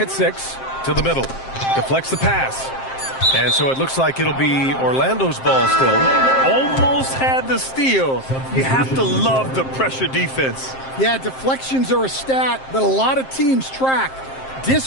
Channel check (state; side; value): late; right; 7.6 ms